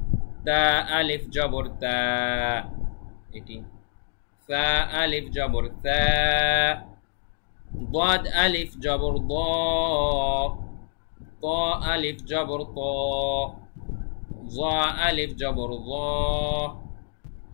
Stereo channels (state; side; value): silent; right; digital silence